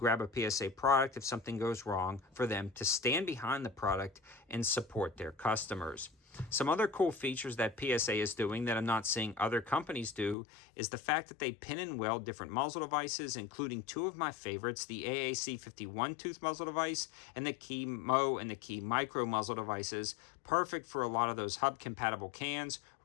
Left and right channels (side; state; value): right; drops out; at 10.4 s